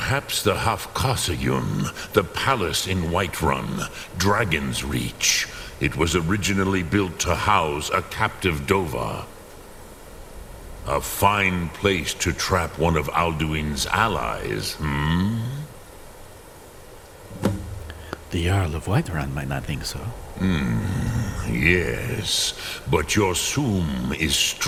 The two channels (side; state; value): both; identical; correlation 1.00